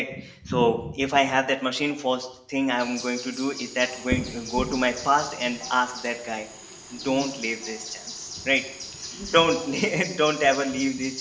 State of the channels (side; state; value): both; identical; correlation 1.00